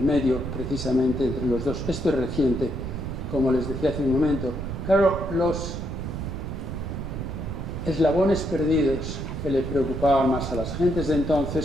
precisamente entre los dos. Esto es reciente, como les decía hace un momento. Claro, los eslabones perdidos que le preocupaban más a las gentes de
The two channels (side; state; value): right; noise; rumble, 5 dB below the sound